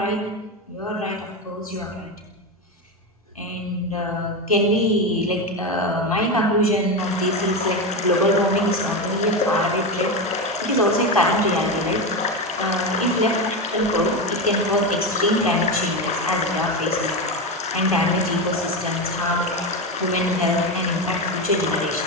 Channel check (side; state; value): both; normal; correlation 0.15